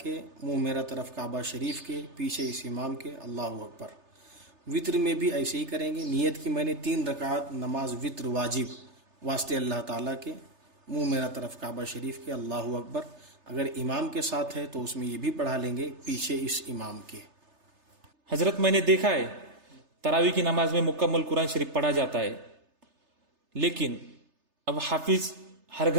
منہ میرا طرف کعبہ شریف کے، پیچھے اس امام کے، اللہ اکبر۔ وطر میں بھی ایسے ہی کریں گے، نیت کی میں نے 3 رکعت نماز وطر واجب واسطے اللہ تعالیٰ کے، منہ میرا طرف کعبہ شریف کے، اللہ اکبر۔ اگر امام کے ساتھ ہے تو اس میں یہ بھی پڑھا لیں گے پیچھے اس امام کے۔ حضرت میں نے دیکھا ہے تراویح کی نماز میں مکمل قرآن شریف پڑھا جاتا ہے، لیکن اب حافظ ہر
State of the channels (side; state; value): left; late; 3.3 ms